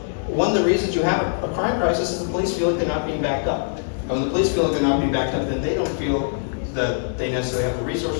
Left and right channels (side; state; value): right; silent; digital silence